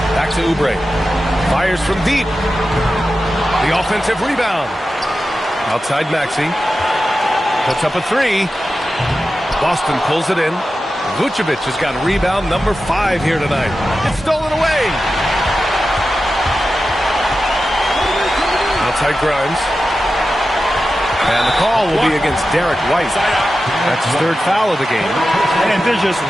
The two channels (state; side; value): normal; both; correlation 0.92